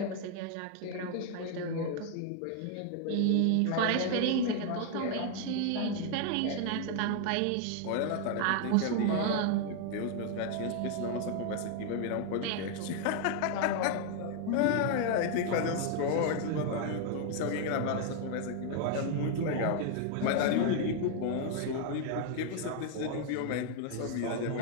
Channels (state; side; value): different; both; correlation 0.00